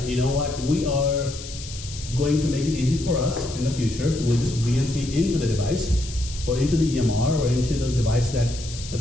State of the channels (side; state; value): left; noise; hiss, 12 dB below the sound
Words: you know what, we are going to make it easy for us in the future. We'll just VNC into the device or into the EMR or into the device